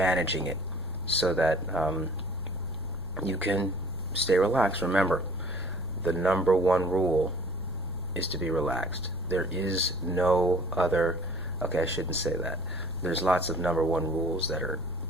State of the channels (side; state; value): left; noise; rumble, 14 dB below the sound